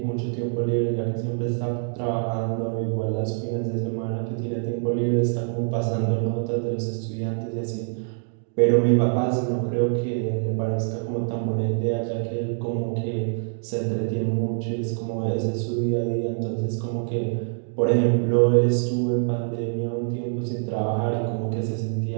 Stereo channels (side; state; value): left; silent; 60 dB below the other